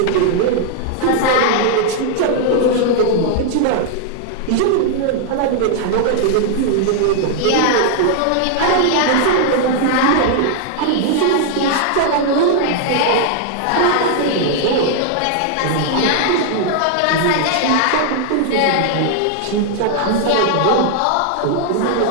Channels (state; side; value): different; both; correlation 0.00